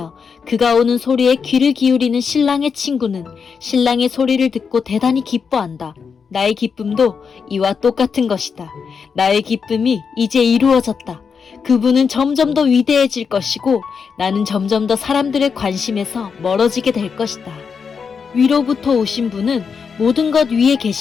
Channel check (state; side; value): quieter; right; 6.0 dB